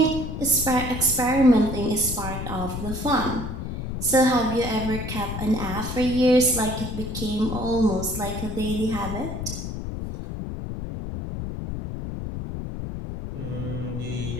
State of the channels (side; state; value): left; noise; rumble, 6 dB below the sound